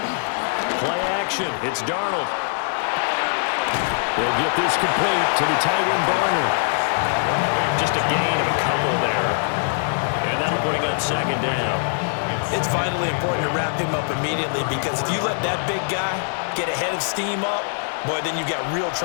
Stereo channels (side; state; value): right; silent; digital silence